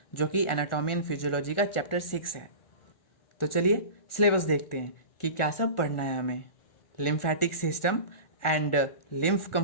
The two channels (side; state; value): right; late; 1.4 ms